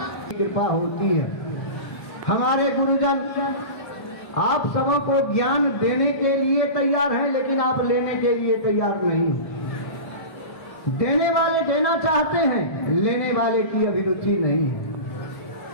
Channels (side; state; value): right; late; 1.7 ms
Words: कृपा होती है। हमारे गुरुजन आप सबों को ज्ञान देने के लिए तैयार हैं, लेकिन आप लेने के लिए तैयार नहीं। देने वाले देना चाहते हैं, लेने वाले की अभिरुचि नहीं है।